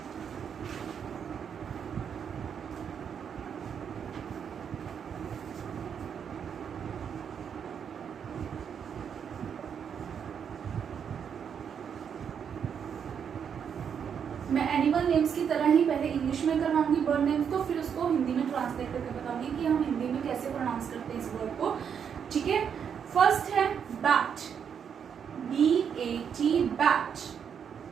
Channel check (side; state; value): left; quieter; 7.6 dB